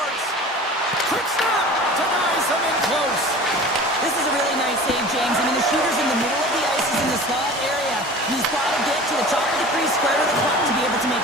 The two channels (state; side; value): normal; both; correlation 0.40